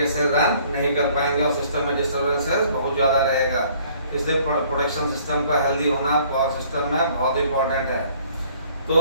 से रन नहीं कर पाएंगे और सिस्टम में डिस्टर्बेंसेस बहुत ज़्यादा रहेगा। इसलिए प्रोटेक्शन सिस्टम का हेल्दी होना पावर सिस्टम में बहुत इंपॉर्टेंट है।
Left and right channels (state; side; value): inverted; both; correlation -0.58